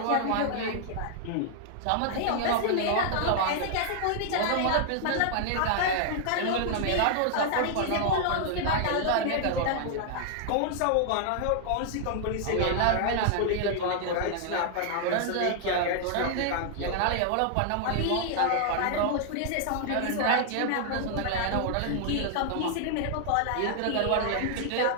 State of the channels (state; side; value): different; both; correlation -0.01